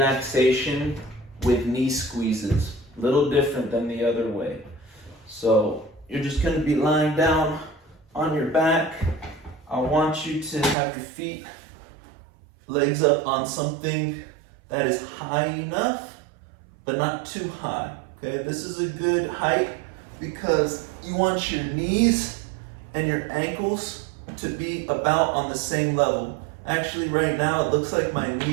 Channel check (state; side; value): drops out; left; at 10.8 s